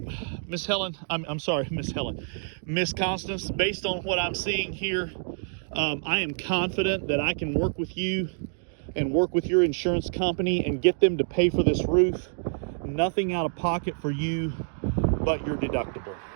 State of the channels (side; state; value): left; silent; digital silence